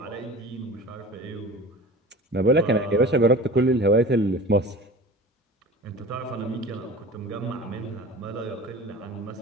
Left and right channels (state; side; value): normal; both; correlation 0.37